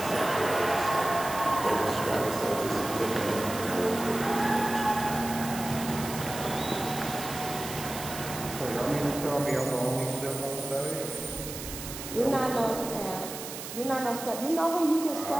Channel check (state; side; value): noise; right; hiss, 9 dB below the sound